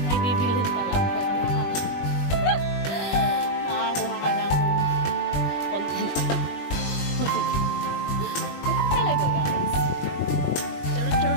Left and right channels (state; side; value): late; right; 21 ms